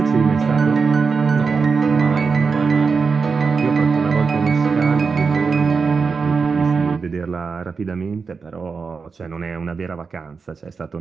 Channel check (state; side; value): quieter; left; 5.0 dB